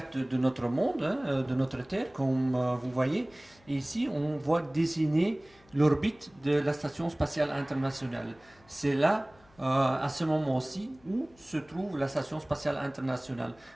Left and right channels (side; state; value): left; noise; hum, 29 dB below the sound